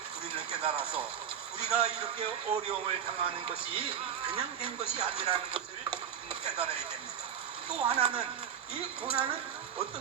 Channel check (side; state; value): left; quieter; 8.5 dB